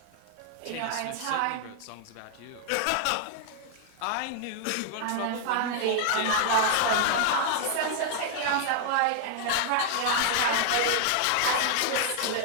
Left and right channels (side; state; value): both; different; correlation 0.00